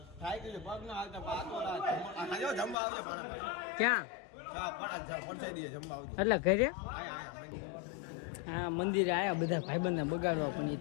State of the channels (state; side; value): drops out; right; at 2.8 s